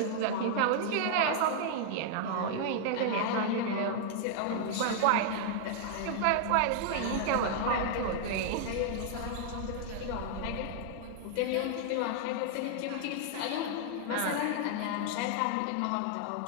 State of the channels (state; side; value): different; both; correlation -0.01